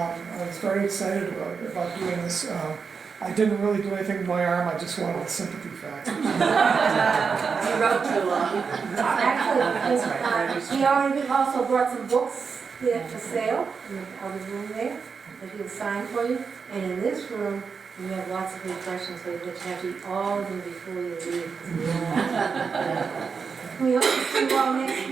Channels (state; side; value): quieter; left; 5.6 dB